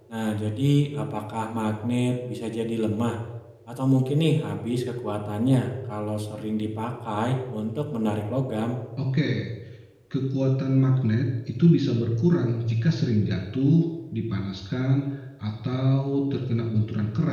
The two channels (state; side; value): identical; both; correlation 1.00